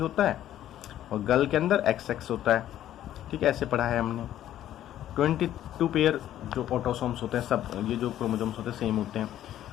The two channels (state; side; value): quieter; right; 12.2 dB